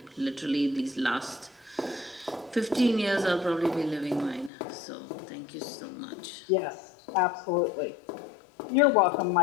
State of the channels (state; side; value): drops out; right; at 4.5 s